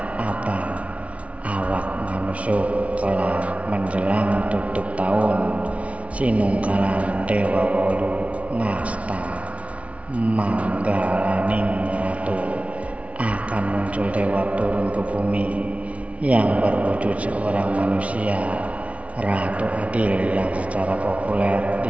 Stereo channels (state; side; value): late; left; 0.064 ms